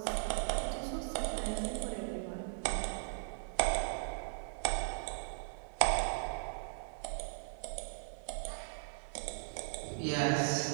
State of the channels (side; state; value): left; silent; digital silence